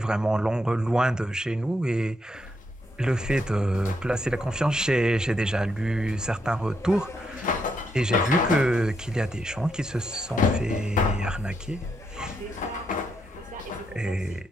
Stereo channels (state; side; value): normal; both; correlation 0.79